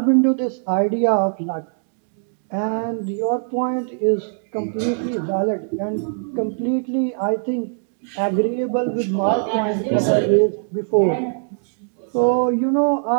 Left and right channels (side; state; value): left; silent; digital silence